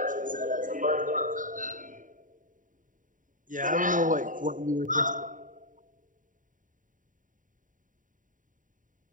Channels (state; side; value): late; left; 0.38 ms